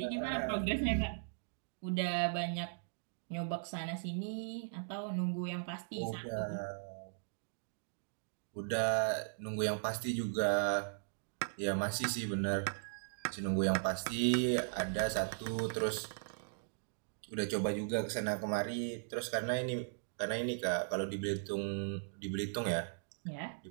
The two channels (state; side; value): silent; left; digital silence